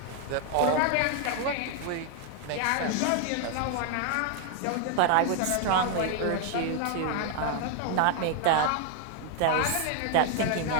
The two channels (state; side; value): different; both; correlation 0.00